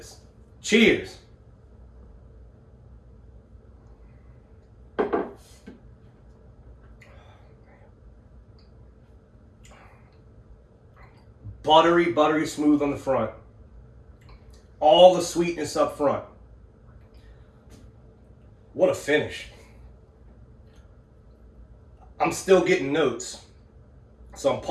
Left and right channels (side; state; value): both; identical; correlation 1.00